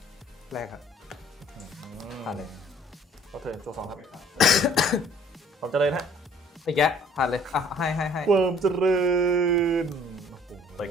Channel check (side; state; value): both; normal; correlation 0.56